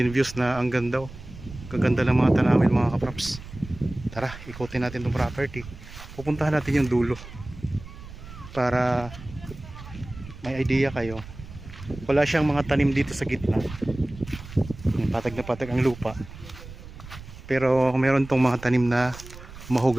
views na ang ganda, oh. Kaganda ng mga tanawin mga kapraps. Tara, ikutin natin itong property. Pupuntahan natin yung dulo para may idea kayo. Wala siyang mga tanim dito sa gitna. Patag na patag ang lupa. Pero meron tong mga tanim na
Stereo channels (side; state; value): right; noise; rumble, 15 dB below the sound